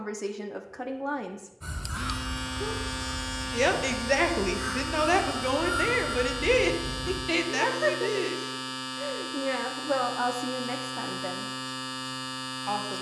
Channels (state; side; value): identical; both; correlation 1.00